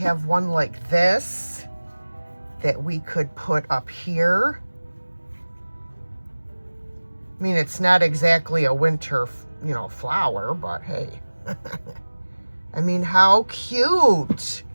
one like this that we could put up here. I mean, it's not exactly a winter, you know, flower, but hey. I mean, how cute.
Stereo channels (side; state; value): both; inverted; correlation -1.00